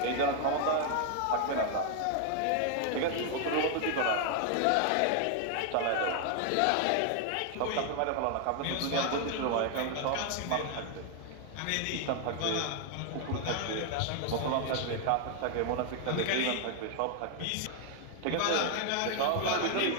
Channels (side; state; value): both; different; correlation 0.00